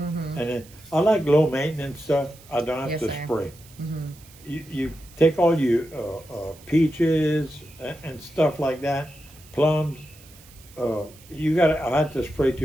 then I like low maintenance stuff. I don't have to spray. You take all your peaches and stuff like that, plums. I had to spray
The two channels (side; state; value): right; noise; hiss, 23 dB below the sound